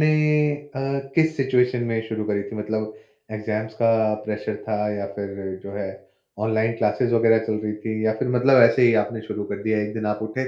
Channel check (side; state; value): both; identical; correlation 1.00